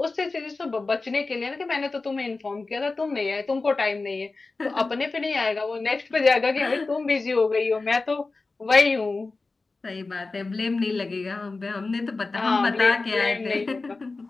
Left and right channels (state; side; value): quieter; right; 3.7 dB